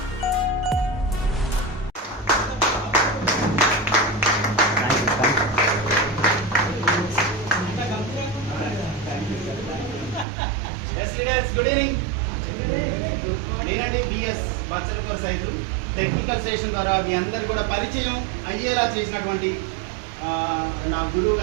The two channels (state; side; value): drops out; left; at 10.2 s